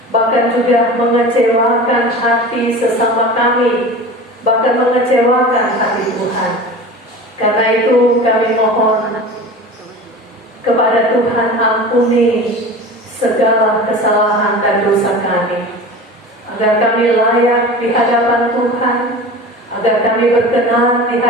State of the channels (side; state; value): both; normal; correlation 0.35